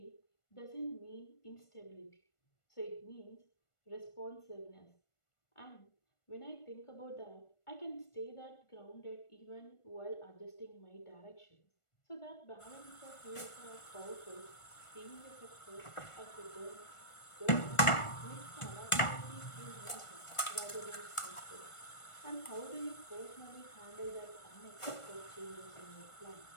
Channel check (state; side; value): late; right; 1.5 ms